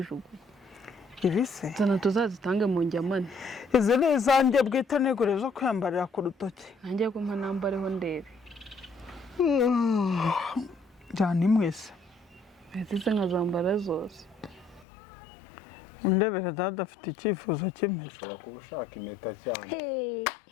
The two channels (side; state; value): right; drops out; at 14.9 s